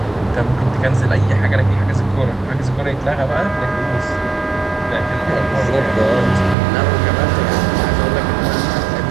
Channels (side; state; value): left; drops out; at 6.6 s